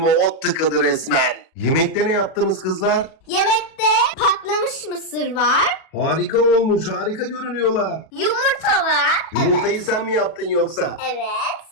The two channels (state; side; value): late; right; 37 ms